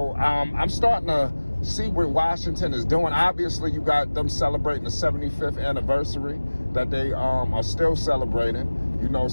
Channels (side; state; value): both; inverted; correlation -1.00